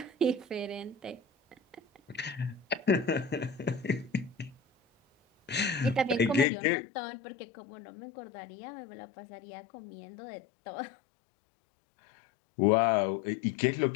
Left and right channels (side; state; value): right; drops out; at 6.5 s